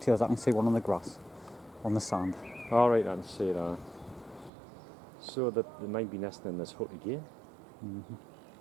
I can see one on the grass, on the sand. All right, I can see that. So that they might be nesting in this hut again.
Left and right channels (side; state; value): left; drops out; at 4.5 s